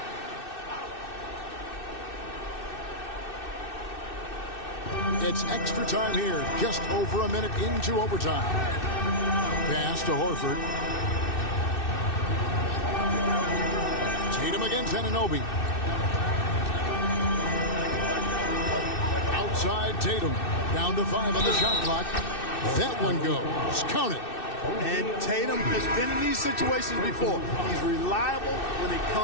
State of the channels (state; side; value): late; right; 2.6 ms